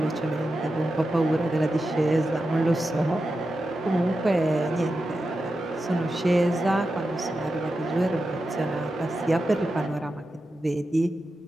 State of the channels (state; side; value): normal; both; correlation 0.90